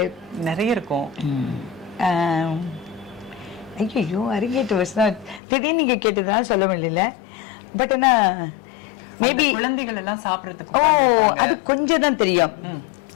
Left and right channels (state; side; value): drops out; right; at 5.4 s